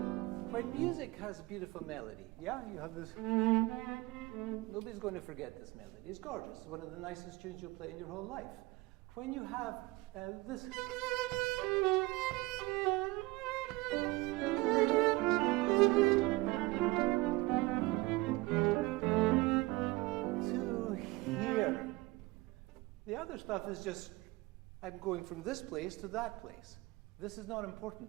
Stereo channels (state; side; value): quieter; left; 21.6 dB